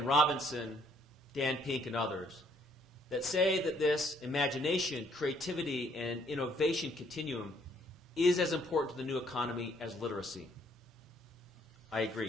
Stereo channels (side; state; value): both; normal; correlation 0.66